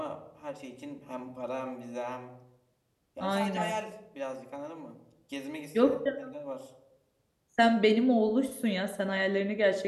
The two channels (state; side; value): identical; both; correlation 1.00